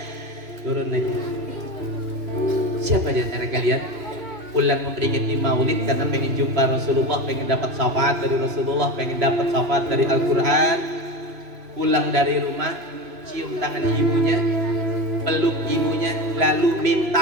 Turun lagi. Siapa di antara kalian pulang memperingati maulid karena pengen jumpa Rasulullah, pengen dapat syafaat dari Rasulullah, pengen dapat syafaat dari Al-Quran? Pulang dari rumah, cium tangan ibunya, peluk ibunya, lalu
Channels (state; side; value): late; left; 3.0 ms